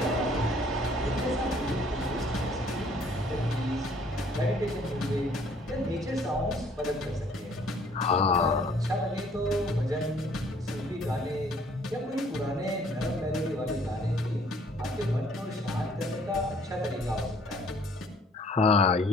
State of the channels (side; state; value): both; normal; correlation 0.59